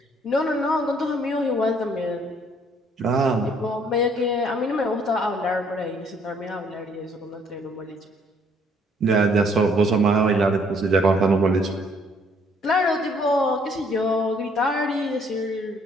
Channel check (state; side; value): normal; both; correlation 0.64